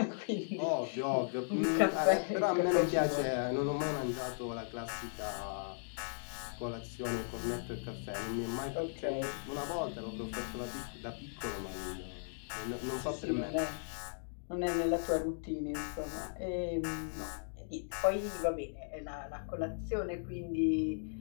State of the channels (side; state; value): right; silent; digital silence